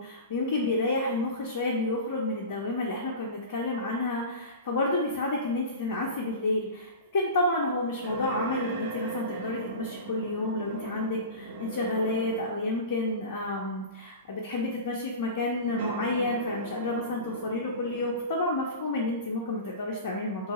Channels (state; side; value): inverted; both; correlation -0.30